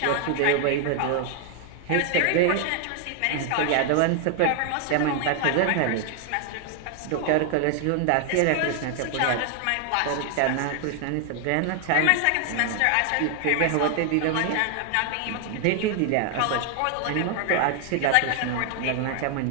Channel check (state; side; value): different; both; correlation 0.00